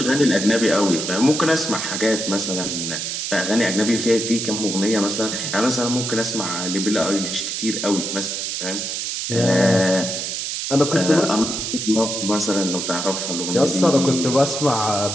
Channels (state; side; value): noise; right; hiss, 3 dB below the sound